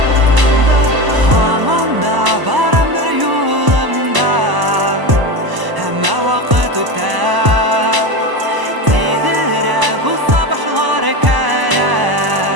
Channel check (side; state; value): left; late; 1.0 ms